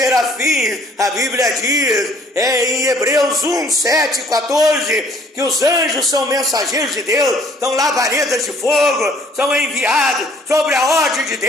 A Bíblia diz em Hebreus 1, 7, 14, que os anjos são mensageiros de Deus, são labaredas de fogo, são enviados sobre a ordem de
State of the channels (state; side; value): normal; both; correlation 0.59